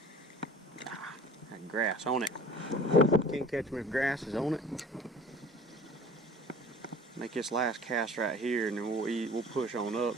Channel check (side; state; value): both; normal; correlation 0.46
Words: That grass on it. Can't catch me if grass is on it. Make this last cast right here, and then we'll push on